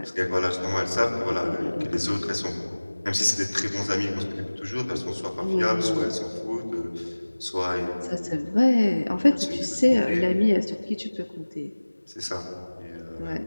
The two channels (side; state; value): both; inverted; correlation -1.00